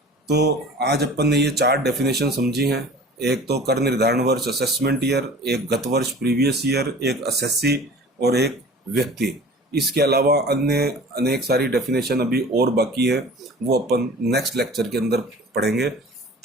तो आज अपन ने ये 4 डेफिनेशन समझी हैं। एक तो कर निर्धारण वर्ष असेसमेंट ईयर, एक गत वर्ष प्रीवियस ईयर, एक असेसी और एक व्यक्ति। इसके अलावा अन्य अनेक सारी डेफिनेशन अभी और बाकी है, वो अपन नेक्स्ट लेक्चर के अंदर पढ़ेंगे।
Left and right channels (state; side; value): normal; both; correlation 0.43